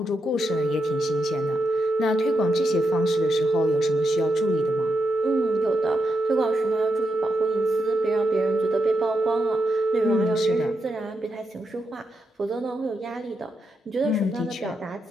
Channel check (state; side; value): normal; both; correlation 0.84